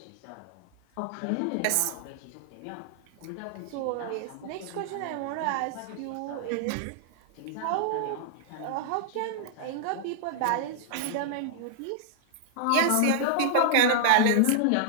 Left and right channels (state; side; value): different; both; correlation 0.00